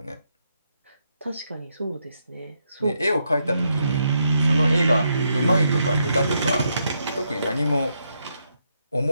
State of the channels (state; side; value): inverted; both; correlation -0.79